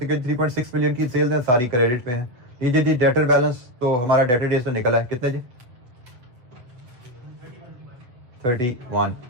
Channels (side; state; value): left; late; 8.0 ms